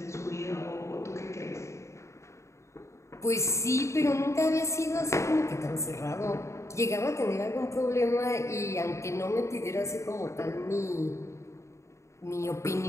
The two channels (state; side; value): late; right; 0.14 ms